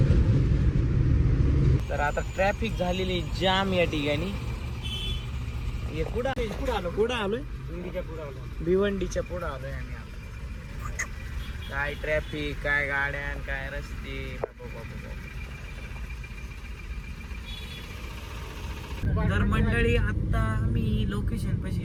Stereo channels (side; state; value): both; identical; correlation 1.00